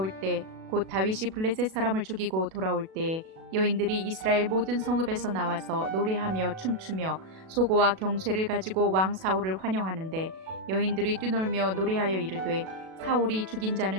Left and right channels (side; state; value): left; late; 37 ms